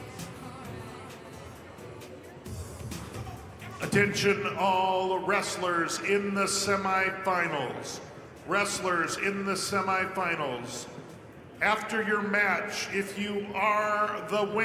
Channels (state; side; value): identical; both; correlation 1.00